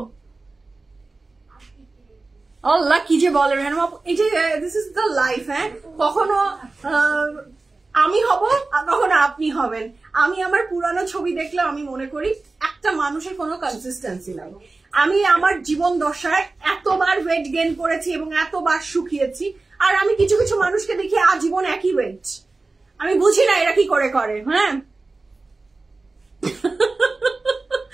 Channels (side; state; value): left; quieter; 3.5 dB